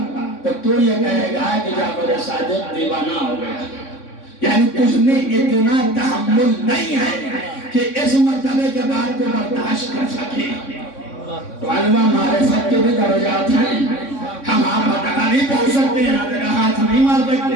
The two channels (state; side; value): late; right; 3.6 ms